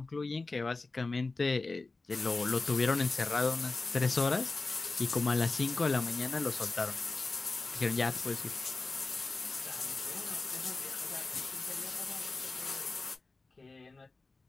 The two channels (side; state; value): right; quieter; 3.5 dB